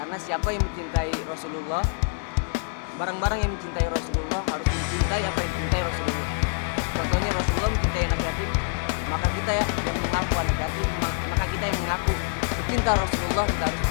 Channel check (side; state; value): right; silent; digital silence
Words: Karena siapa yang mencintai Rasulullah, barang-barang yang mencintai Rasulullah harus mencintai apa yang dicintai Rasulullah. Contohnya Rasulullah mencintai anak yatim, maka kita ya yang mengaku anak yatim, maka kita yang mengaku pecinta Rasulullah, kita harus